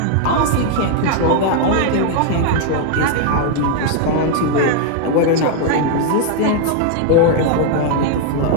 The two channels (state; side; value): different; both; correlation 0.00